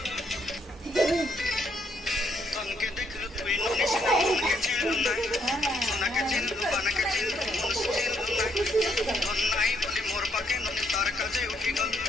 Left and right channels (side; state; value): both; normal; correlation 0.72